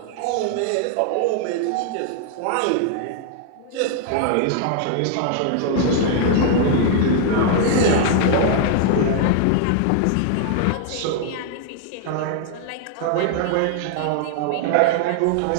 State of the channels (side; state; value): both; different; correlation 0.00